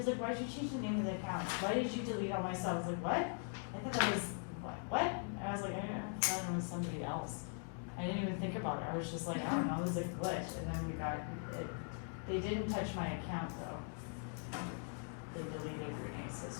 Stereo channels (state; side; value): silent; right; 50 dB below the other